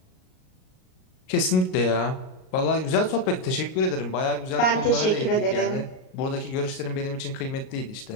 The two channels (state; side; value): late; right; 38 ms